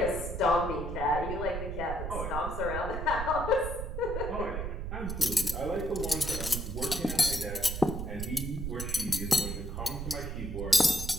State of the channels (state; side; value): noise; right; rumble, 5 dB below the sound